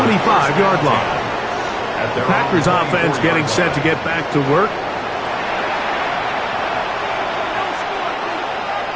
line. The Packers offense getting set to get back to work.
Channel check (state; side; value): identical; both; correlation 1.00